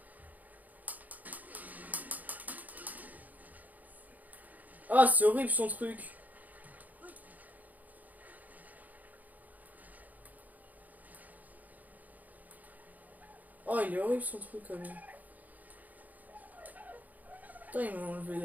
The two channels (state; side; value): late; left; 0.080 ms